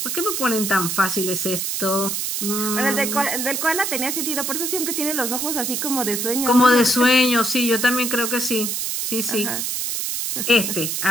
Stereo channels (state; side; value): noise; right; hiss, 2 dB below the sound